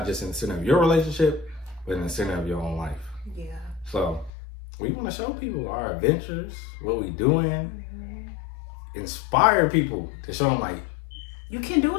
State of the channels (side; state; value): right; drops out; at 4.3 s